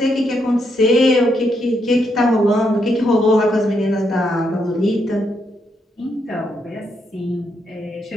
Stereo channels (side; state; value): both; normal; correlation 0.78